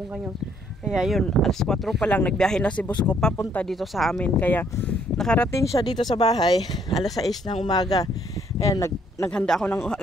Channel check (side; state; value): both; normal; correlation 0.66